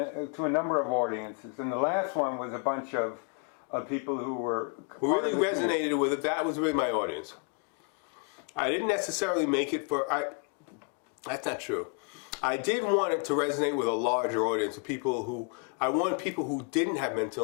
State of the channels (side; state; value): right; quieter; 37.4 dB